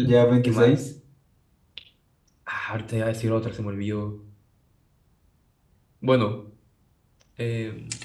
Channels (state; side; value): identical; both; correlation 1.00